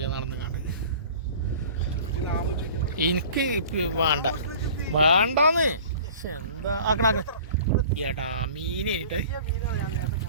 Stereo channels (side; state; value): both; inverted; correlation -0.44